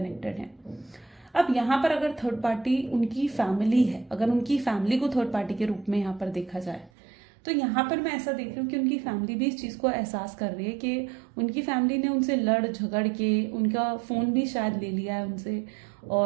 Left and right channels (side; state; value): left; drops out; at 6.9 s